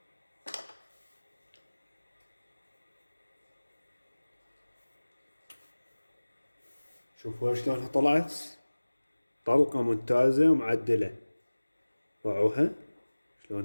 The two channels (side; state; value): both; inverted; correlation -1.00